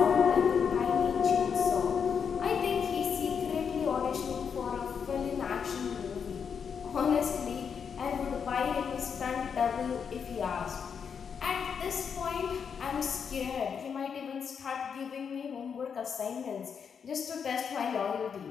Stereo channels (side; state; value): right; quieter; 6.8 dB